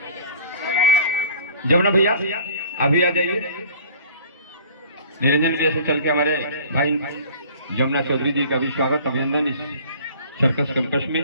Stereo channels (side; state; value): both; inverted; correlation -0.48